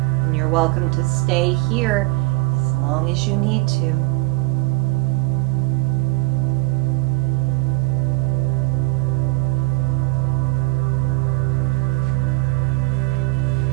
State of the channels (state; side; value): quieter; left; 21.2 dB